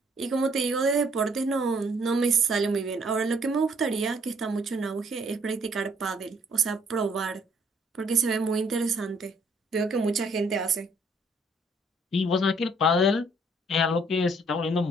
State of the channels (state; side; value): normal; both; correlation 0.64